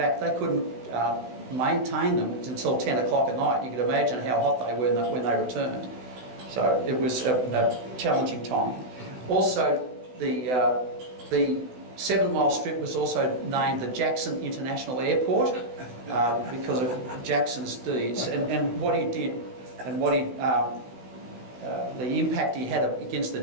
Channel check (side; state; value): left; late; 16 ms